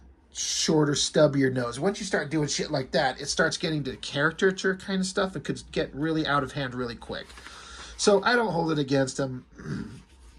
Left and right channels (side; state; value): both; identical; correlation 1.00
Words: shorter, stubbier nose. Once you start doing shit like that, it starts getting to caricature kind of stuff. It could get really out of hand really quick. So I don't hold it against him,